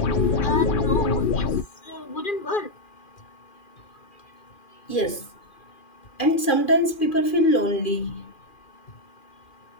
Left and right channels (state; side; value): late; right; 2.4 ms